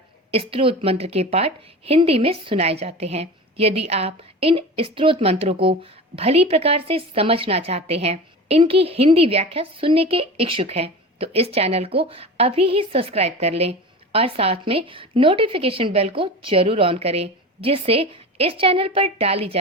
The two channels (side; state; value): both; normal; correlation 0.32